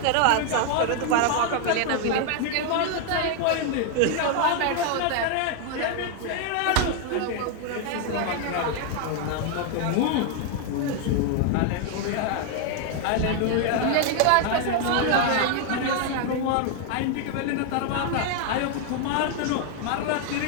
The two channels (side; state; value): both; different; correlation 0.00